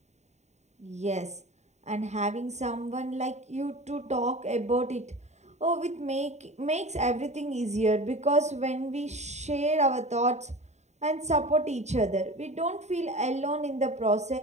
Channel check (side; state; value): left; late; 0.33 ms